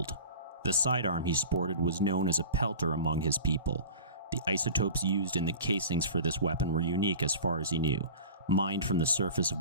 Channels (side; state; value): both; inverted; correlation -0.38